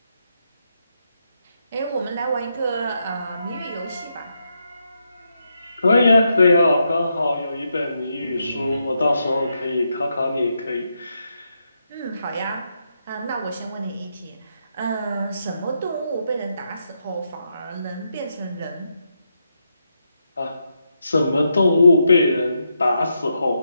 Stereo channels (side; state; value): both; inverted; correlation -0.82